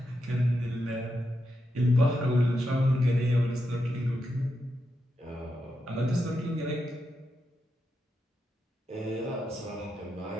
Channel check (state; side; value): normal; both; correlation 0.85